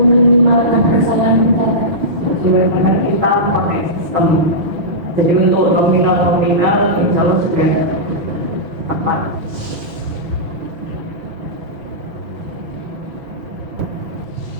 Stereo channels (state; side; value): late; left; 6.3 ms